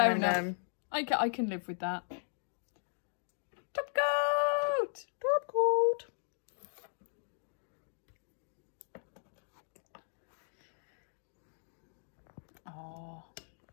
enough. I can live with that. Top coat! Top coat! Oh.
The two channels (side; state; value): right; silent; digital silence